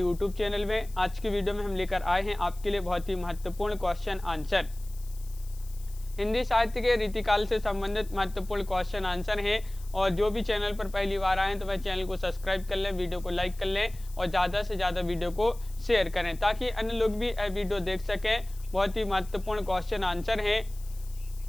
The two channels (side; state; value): left; noise; hiss, 22 dB below the sound